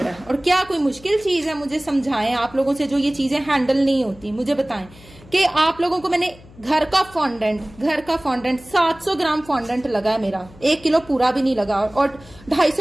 है। और क्या कोई मुश्किल चीज है? मुझे समझाएं, आप लोगों से जो ये चीजें हैंडल नहीं होती मुझे बताएं कि आप लोगों को मैंने घर का फॉन्डेंट 700 ग्राम फॉन्डेंट लगा है मेरा, 1 किलो पूरा भी नहीं लगा। और 250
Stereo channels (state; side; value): noise; left; hum, 23 dB below the sound